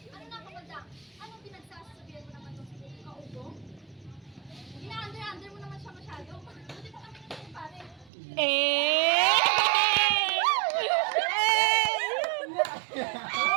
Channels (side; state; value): left; drops out; at 8.1 s